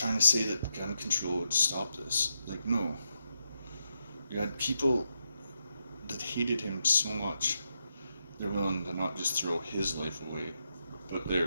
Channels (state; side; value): inverted; both; correlation -0.84